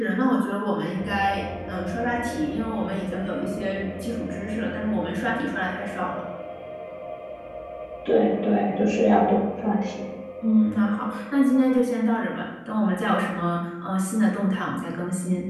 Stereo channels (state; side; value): identical; both; correlation 1.00